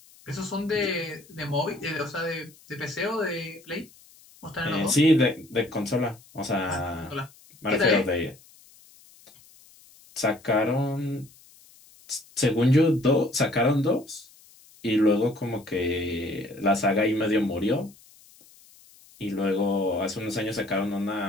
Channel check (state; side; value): noise; left; hiss, 26 dB below the sound